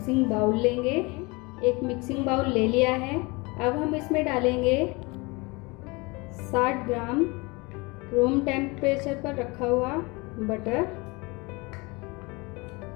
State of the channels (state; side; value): quieter; right; 26.1 dB